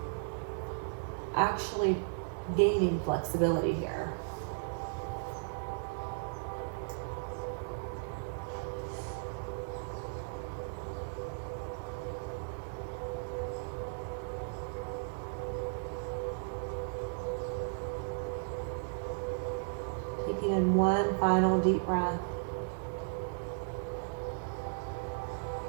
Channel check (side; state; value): left; silent; digital silence